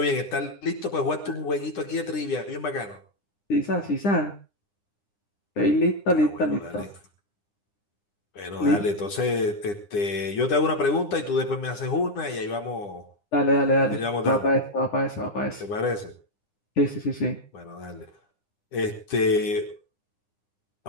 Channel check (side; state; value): right; late; 9.9 ms